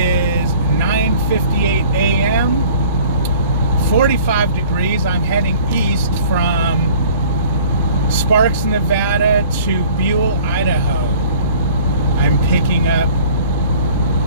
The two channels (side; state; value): both; inverted; correlation -0.50